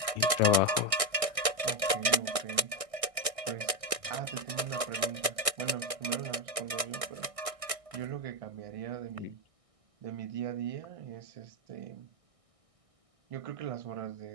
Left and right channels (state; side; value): late; left; 1.6 ms